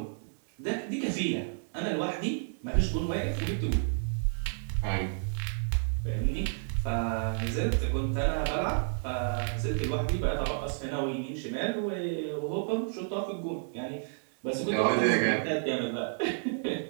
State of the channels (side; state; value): left; silent; 57 dB below the other